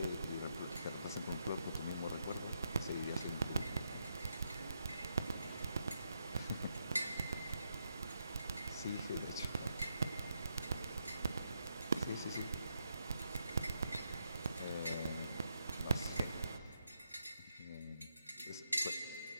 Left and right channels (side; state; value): both; inverted; correlation -0.82